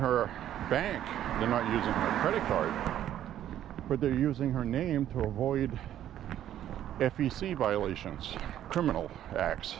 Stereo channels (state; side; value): quieter; left; 11.5 dB